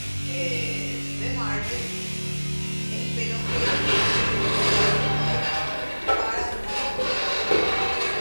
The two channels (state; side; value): inverted; both; correlation -1.00